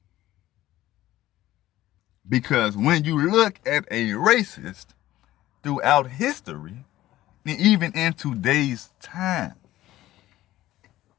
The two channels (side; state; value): right; quieter; 15.2 dB